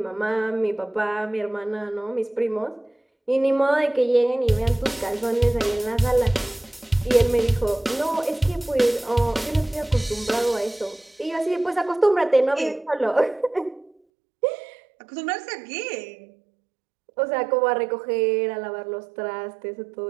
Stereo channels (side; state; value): left; drops out; at 14.0 s